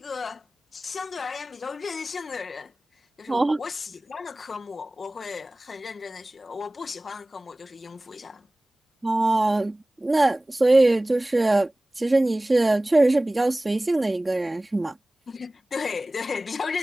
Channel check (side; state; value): both; normal; correlation 0.98